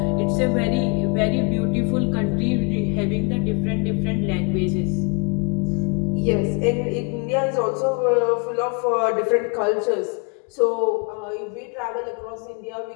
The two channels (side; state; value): right; quieter; 32.4 dB